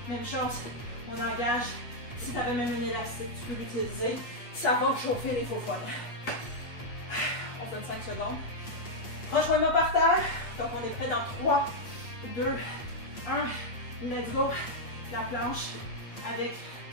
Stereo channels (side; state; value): right; late; 8.4 ms